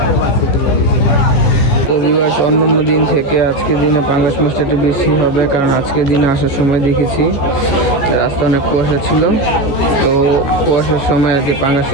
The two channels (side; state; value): right; late; 14 ms